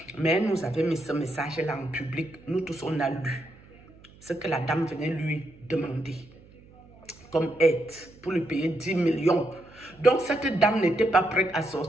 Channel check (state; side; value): noise; right; hum, 24 dB below the sound